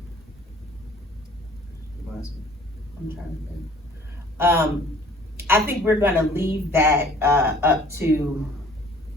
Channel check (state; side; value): normal; both; correlation 0.53